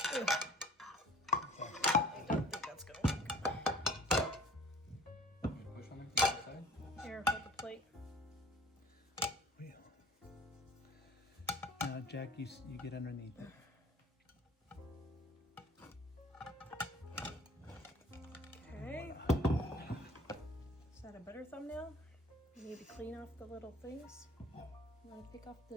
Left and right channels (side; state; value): both; normal; correlation 0.48